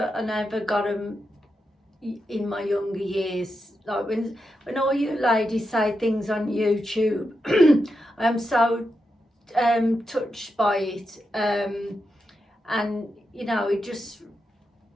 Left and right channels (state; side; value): normal; both; correlation 0.86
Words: never got them in my younger years. Like when all you ladies say things on YouTube, I am so touched by it, and you know, it just